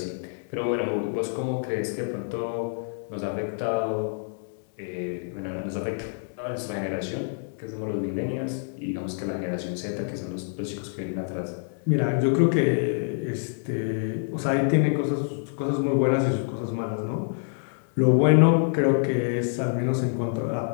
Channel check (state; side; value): silent; right; digital silence